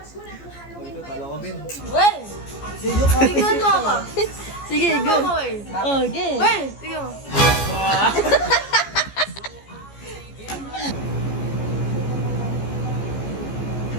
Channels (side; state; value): right; late; 14 ms